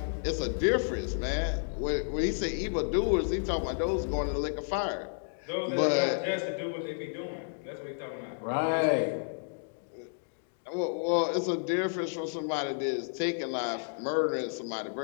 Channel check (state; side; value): silent; right; digital silence